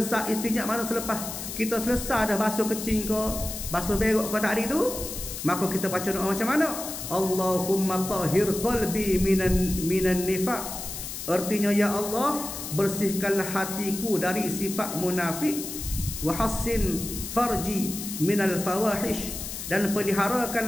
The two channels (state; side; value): noise; left; hiss, 7 dB below the sound